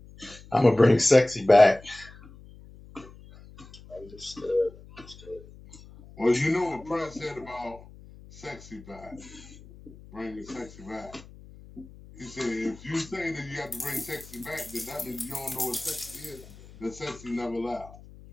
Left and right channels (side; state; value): left; noise; hum, 20 dB below the sound